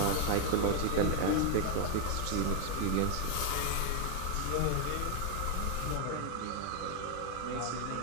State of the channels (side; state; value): both; different; correlation 0.00